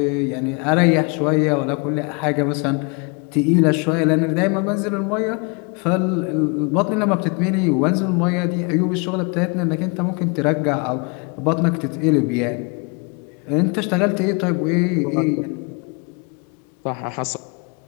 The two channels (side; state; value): right; quieter; 33.2 dB